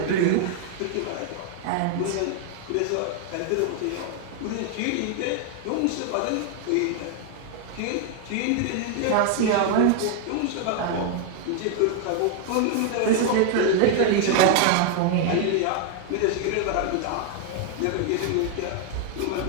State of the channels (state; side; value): different; both; correlation 0.00